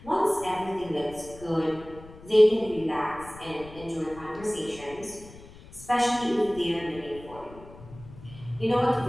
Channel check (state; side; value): noise; left; rumble, 18 dB below the sound